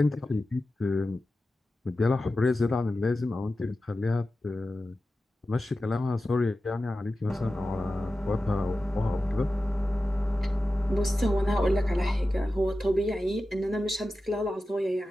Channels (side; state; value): both; normal; correlation 0.94